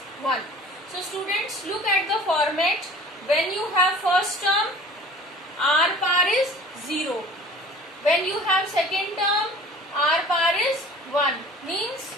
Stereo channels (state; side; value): normal; both; correlation 0.46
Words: 1. So students, look at the format. When you have first term, R power is 0. When you have second term, R power is 1. Means